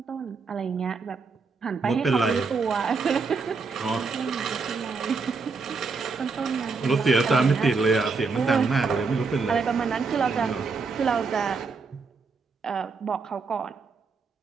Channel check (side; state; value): left; quieter; 4.6 dB